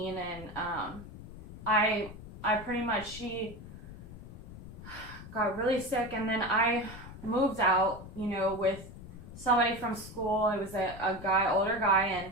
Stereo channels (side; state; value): left; noise; rumble, 14 dB below the sound